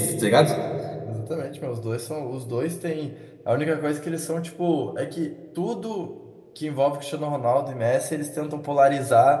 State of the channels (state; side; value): identical; both; correlation 1.00